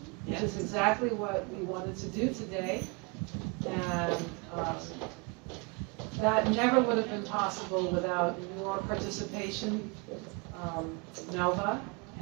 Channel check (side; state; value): left; quieter; 31.3 dB